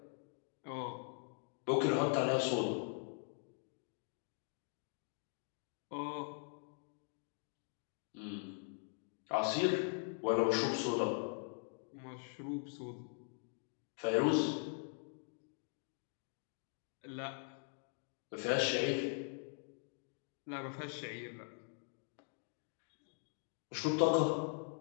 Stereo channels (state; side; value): silent; right; 50 dB below the other